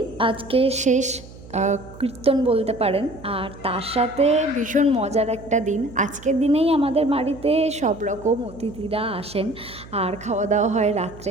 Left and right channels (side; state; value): right; noise; hum, 18 dB below the sound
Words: আজকে শেষ কীর্তন বলতে পারেন। আর তার সাথে ভীষণ মজার একটা দিন। আজকের দিনেই আমাদের বাড়িতে সব রকম অতিথিরা আসেন আর খাওয়া দাওয়া হয় রাত্রে।